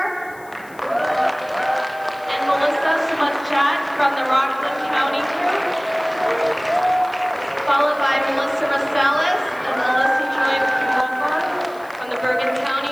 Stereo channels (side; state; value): left; noise; hiss, 25 dB below the sound